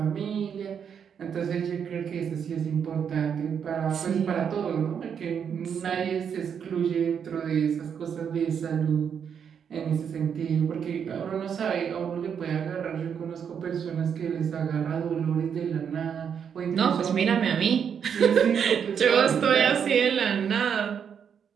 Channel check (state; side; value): quieter; left; 7.5 dB